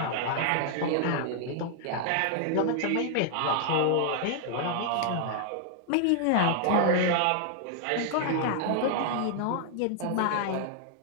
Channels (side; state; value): both; different; correlation 0.00